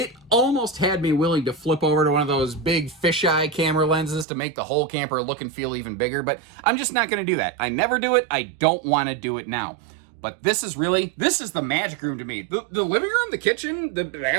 almost had me willing to flip over to one of those big fisheye camera lenses to make the whole camper look and feel even bigger, but I'm just not going to do that. I never do it. I don't want to do it now. But this is the magic room to me. The living room, the kitchen, the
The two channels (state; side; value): drops out; left; at 4.2 s